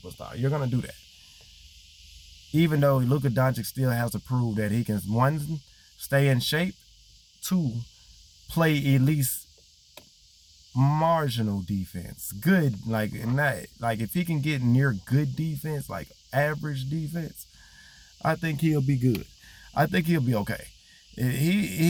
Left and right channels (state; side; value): identical; both; correlation 1.00